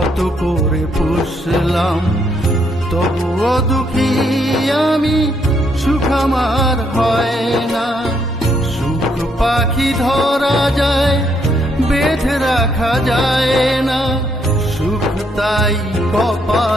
করে পুষলাম, তবুও দুঃখী আমি, সুখ আমার হয় না। সুখ পাখি ধরা যায়, বেঁধে রাখা যায় না, সুখ তাই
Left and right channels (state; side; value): normal; both; correlation 0.73